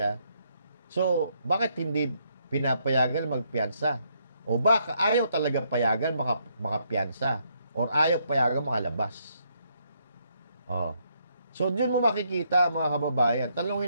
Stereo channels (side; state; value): both; inverted; correlation -0.74